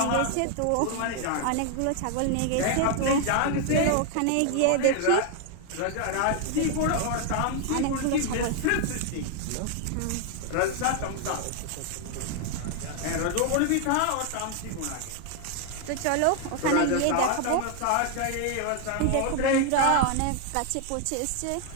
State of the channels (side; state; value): both; different; correlation 0.00